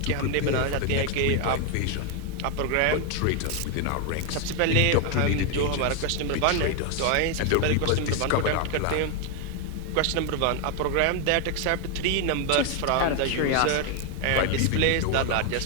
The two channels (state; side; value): different; both; correlation 0.01